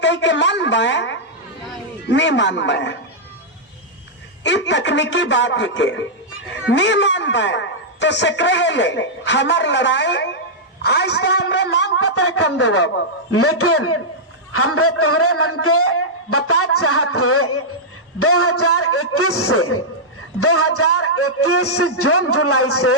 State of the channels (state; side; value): normal; both; correlation -0.09